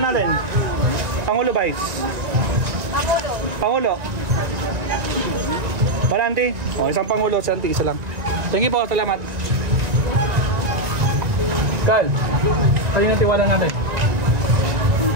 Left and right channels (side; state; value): left; late; 1.9 ms